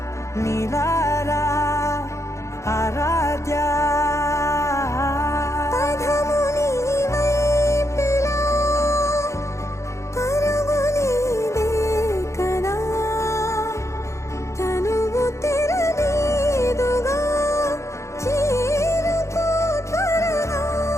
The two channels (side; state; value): right; late; 0.14 ms